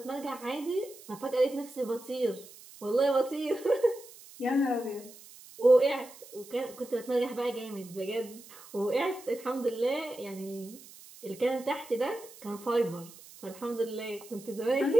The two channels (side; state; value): right; noise; hiss, 19 dB below the sound